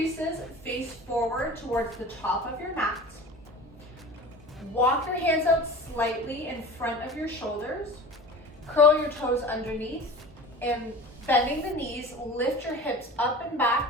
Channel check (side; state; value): both; normal; correlation 0.36